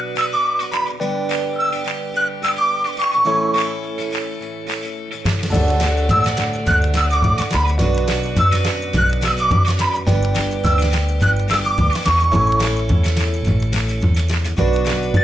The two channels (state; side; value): normal; both; correlation 0.89